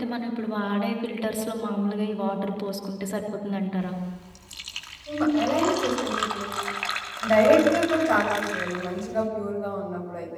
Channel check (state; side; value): identical; both; correlation 1.00